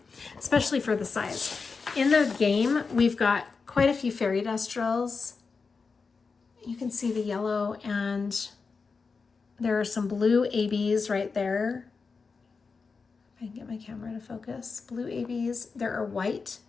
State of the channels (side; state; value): right; quieter; 4.8 dB